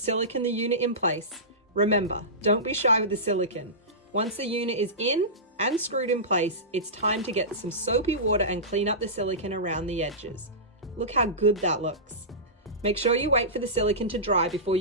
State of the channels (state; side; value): normal; both; correlation -0.19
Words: the unit in place. Remember, don't be shy with the silicone. Once the unit is in and screwed in place, it's time to get some soapy water and clean up the silicone around the edges. Look how good that looks. Make sure you wait for the silicone to dry before